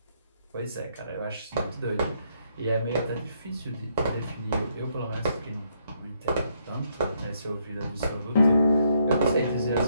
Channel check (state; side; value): inverted; both; correlation -0.74